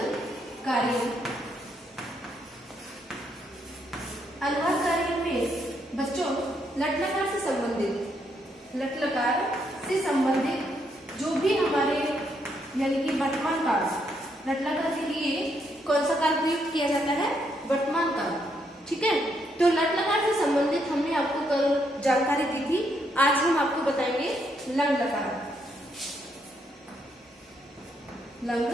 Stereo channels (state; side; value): normal; both; correlation 0.76